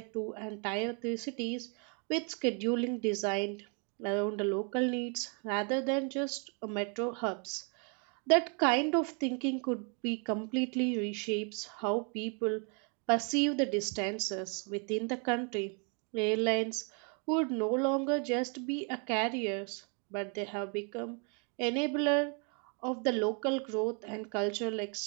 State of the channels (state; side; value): quieter; left; 37.5 dB